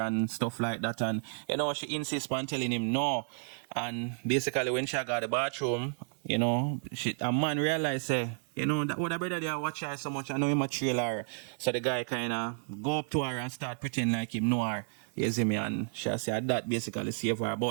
and stuff like that, and, you know, she insists on telling him no. And basically when she got the bathroom, you know, a man realized, say, you know, that would have better they watch her so much, I know him a trail her. So the guy kind of go up to her and start pretending like him know her. You see me, and she said that basically save her.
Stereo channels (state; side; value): silent; left; 57 dB below the other